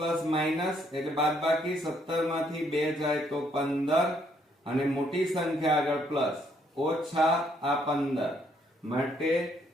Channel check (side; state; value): both; normal; correlation 0.70